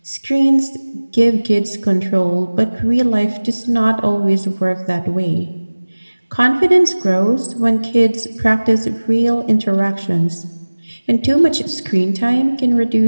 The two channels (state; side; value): inverted; both; correlation -1.00